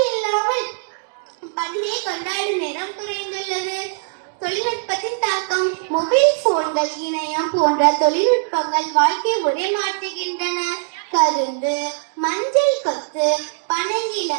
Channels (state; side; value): silent; left; digital silence